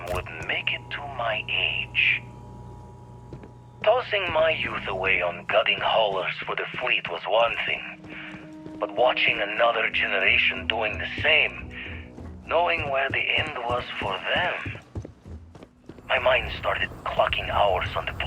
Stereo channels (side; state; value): both; identical; correlation 1.00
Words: wouldn't make it to my age. Tossing my youth away on gutting haulers for the fleet was one thing, but watching another generation doing the same, knowing where the end was for them, my mind started clocking hours on the